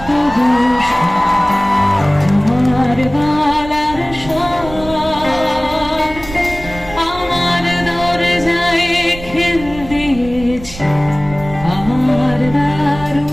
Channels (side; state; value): right; noise; rumble, 14 dB below the sound